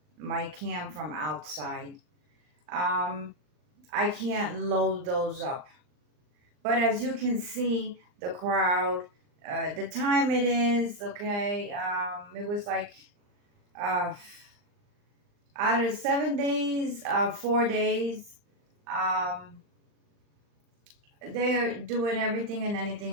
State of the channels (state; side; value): late; left; 39 ms